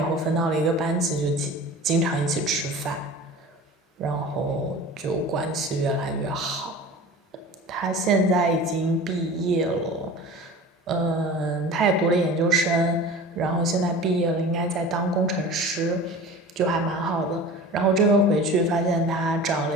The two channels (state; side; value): normal; both; correlation 0.38